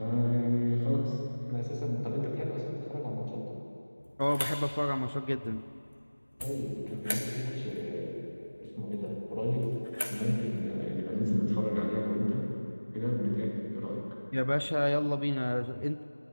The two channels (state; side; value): inverted; both; correlation -1.00